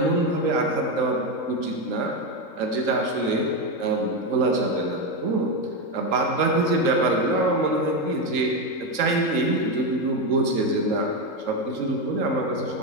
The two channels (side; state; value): right; late; 3.8 ms